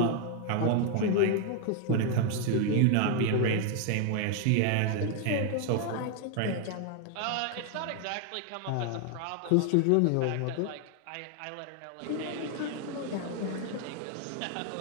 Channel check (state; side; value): different; both; correlation 0.00